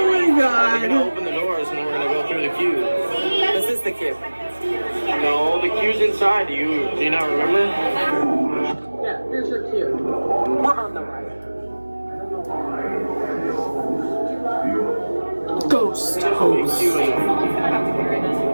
my god. We're gonna open the doors and then we're gonna go through the queue. This is the queue. No, the queue's inside. Do you not remember? Yeah, here's your queue. We're on the ride. Ghost. Our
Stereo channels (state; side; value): inverted; both; correlation -1.00